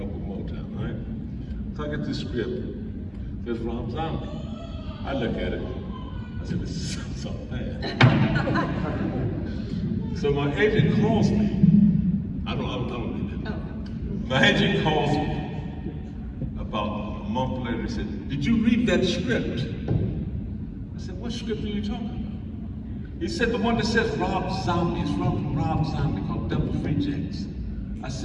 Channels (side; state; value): both; identical; correlation 1.00